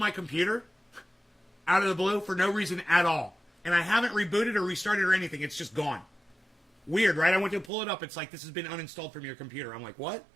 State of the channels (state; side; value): drops out; left; at 7.7 s